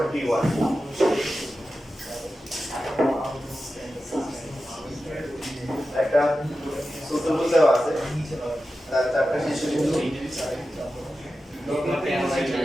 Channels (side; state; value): both; normal; correlation 0.92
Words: 21 একটা সূত্রভুজ দেওয়া আছে, তার চারটা শিশু বিন্দু